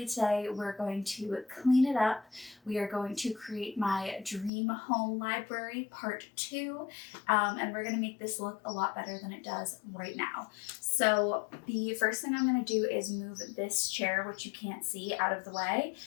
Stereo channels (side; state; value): right; drops out; at 4.5 s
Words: today we're going to clean it up. We are going to create my dream home library part 2, and we're going to make this look a lot better than it does right now. So the first thing I'm going to do is move this chair, which you can't see, out of the way,